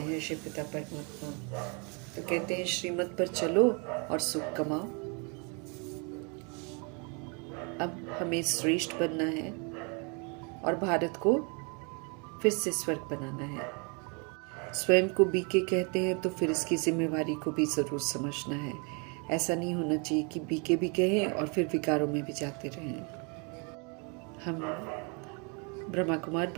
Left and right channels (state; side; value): quieter; left; 34.3 dB